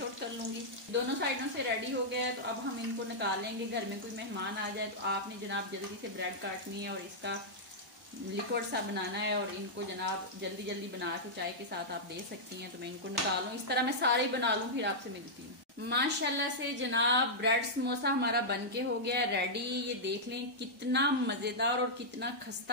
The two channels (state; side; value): normal; both; correlation -0.08